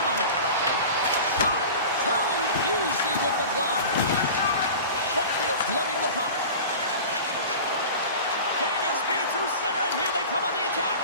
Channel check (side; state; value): both; inverted; correlation -0.35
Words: it. Shot too easy with the glove. Brookfield's loving the puck. Gaining speed through center, and here they come on the attack.